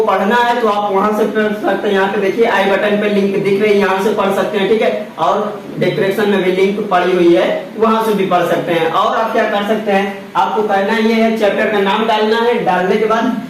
पढ़ना है तो आप वहां से पढ़ सकते हैं। यहाँ पे देखिए आई बटन पे लिंक दिख रही है, यहाँ से पढ़ सकते हैं। ठीक है, और डिस्क्रिप्शन में भी लिंक पड़ी हुई है, वहां से भी पढ़ सकते हैं। और आप क्या कर सकते हैं, आपको करना ये है, चैप्टर का नाम डालना है, डालने के बाद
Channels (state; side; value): identical; both; correlation 1.00